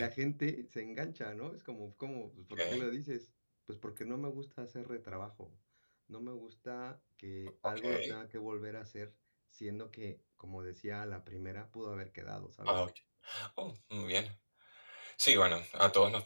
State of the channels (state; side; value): inverted; both; correlation -1.00